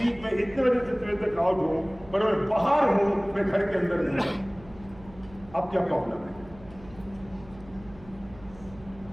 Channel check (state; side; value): noise; right; hum, 21 dB below the sound